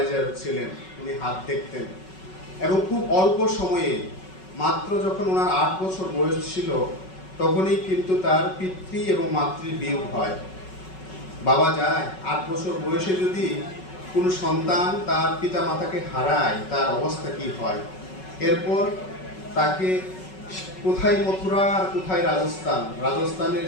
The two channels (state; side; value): late; right; 5.3 ms